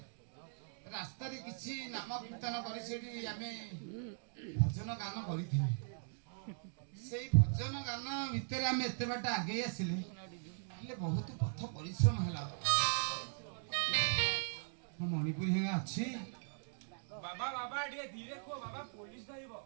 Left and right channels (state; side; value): silent; left; digital silence